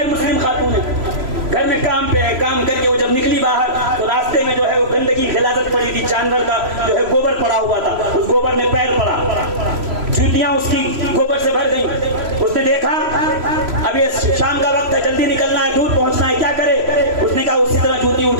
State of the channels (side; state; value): left; late; 3.0 ms